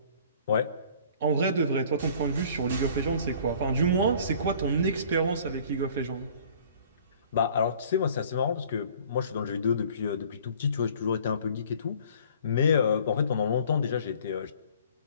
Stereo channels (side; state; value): both; inverted; correlation -0.52